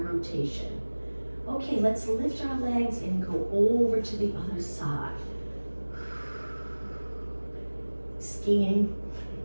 Okay, let's lift our legs and go over to the other side. Skiing,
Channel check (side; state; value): both; inverted; correlation -1.00